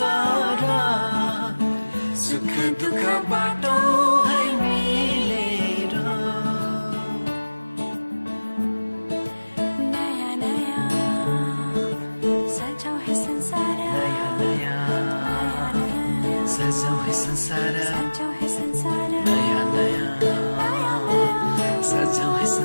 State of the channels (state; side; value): inverted; both; correlation -1.00